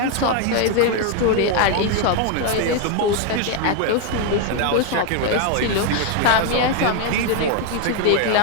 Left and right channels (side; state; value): both; different; correlation 0.01